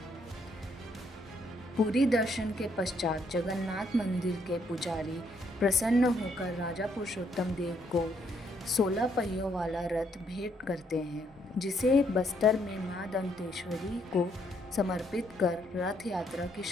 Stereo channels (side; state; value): both; normal; correlation 0.72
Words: पूरी दर्शन के पश्चात जगन्नाथ मंदिर के पुजारी प्रसन्न होकर राजा पुरुषोत्तम देव को 16 पहियों वाला रथ भेंट करते हैं, जिसे बस्तर में मां दंतेश्वरी को समर्पित कर रथ यात्रा की